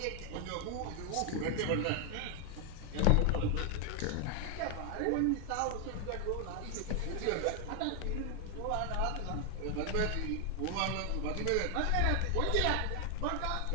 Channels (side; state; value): both; different; correlation 0.00